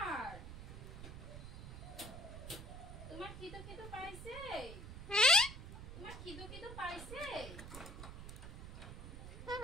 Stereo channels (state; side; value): noise; right; rumble, 10 dB below the sound